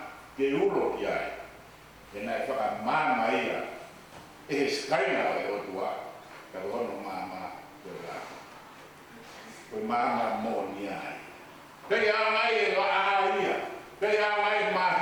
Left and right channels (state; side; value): identical; both; correlation 1.00